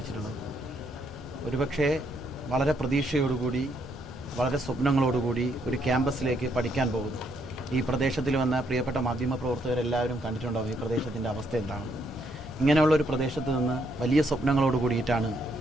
ഒരുപക്ഷെ വളരെ പ്രതീക്ഷയോടുകൂടി, വളരെ സ്വപ്നങ്ങളോടുകൂടി ഒരു ക്യാമ്പസിലേക്ക് പഠിക്കാൻ പോകുന്നു. ഈ പ്രദേശത്തിൽ വന്ന പ്രിയപ്പെട്ട മാധ്യമപ്രവർത്തകരെല്ലാവരും കണ്ടിട്ടുണ്ടാവും ഈ പ്രദേശത്തിൻ്റെ അവസ്ഥ എന്താണ്. ഇങ്ങനെയുള്ള ഒരു പ്രദേശത്ത് നിന്ന് വലിയ സ്വപ്നങ്ങളോട് കൂടിയിട്ടാണ്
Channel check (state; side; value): normal; both; correlation 0.73